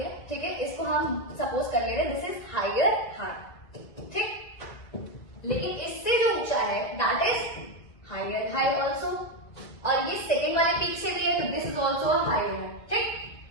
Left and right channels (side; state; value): right; late; 2.3 ms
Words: ठीक है, इसको हम सपोज कर लेंगे दिस इज हायर हाई. ठीक, लेकिन इससे जो ऊंचा है that is higher high also, और ये सेकेंड वाले पीक से भी है तो this is also higher high. ठीक,